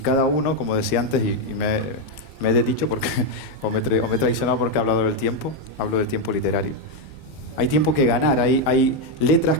uno, como decía antes, y me he desdicho porque, o me he traicionado porque he hablado del tiempo, hablo del tiempo literario. Hay tiempo que ganar, hay letras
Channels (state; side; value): normal; both; correlation 0.03